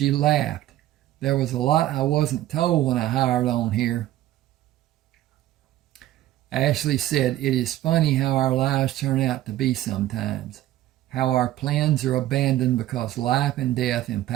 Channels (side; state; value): left; quieter; 14.1 dB